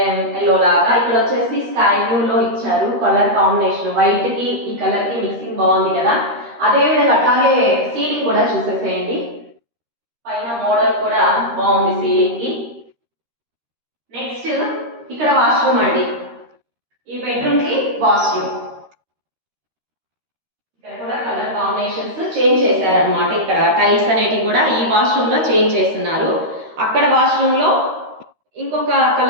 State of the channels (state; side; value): late; left; 13 ms